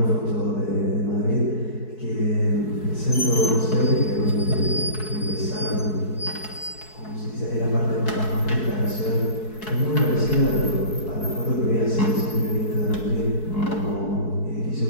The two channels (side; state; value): right; late; 4.7 ms